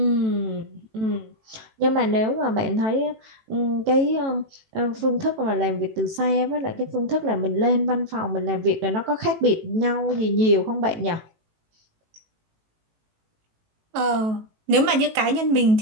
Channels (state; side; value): late; left; 18 ms